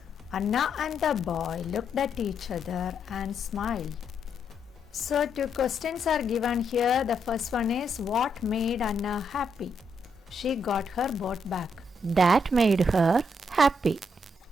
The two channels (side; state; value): both; normal; correlation 0.78